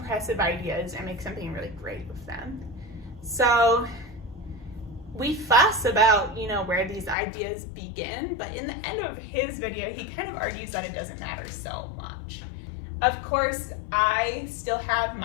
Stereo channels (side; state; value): right; drops out; at 7.2 s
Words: ideas and make something really great with them. So we fuss about, you know, where these ideas begin, but in the end of his video, he kind of argues that it doesn't matter so much. Of course, I still have